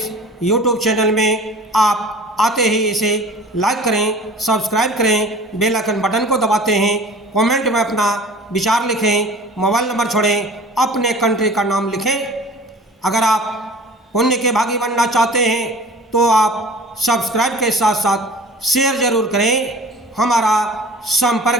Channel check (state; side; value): normal; both; correlation 0.43